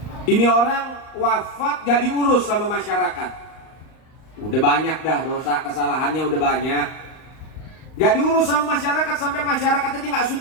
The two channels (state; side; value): late; right; 38 ms